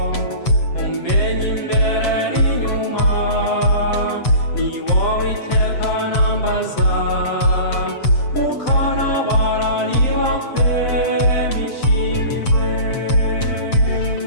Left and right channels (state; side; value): late; right; 7.7 ms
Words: umenya imbere n'inyuma ni wowe iteka nambaza ukanabara niba kwe bishimiwe